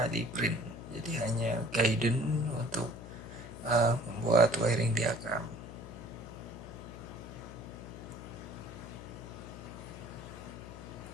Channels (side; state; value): left; noise; hum, 12 dB below the sound